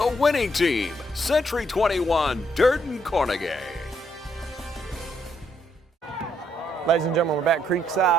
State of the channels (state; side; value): normal; both; correlation 0.73